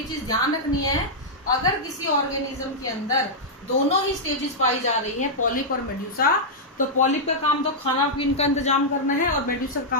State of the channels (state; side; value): normal; both; correlation -0.07